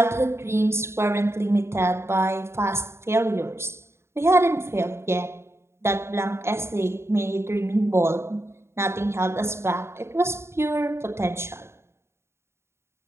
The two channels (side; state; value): left; late; 0.13 ms